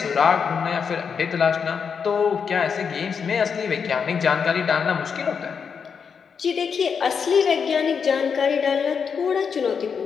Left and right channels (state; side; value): quieter; right; 6.3 dB